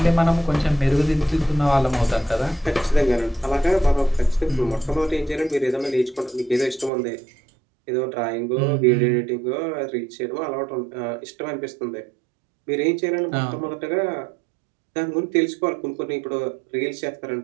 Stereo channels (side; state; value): left; drops out; at 6.9 s